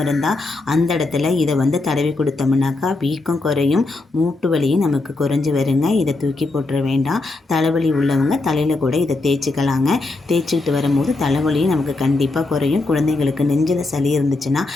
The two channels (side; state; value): right; quieter; 3.2 dB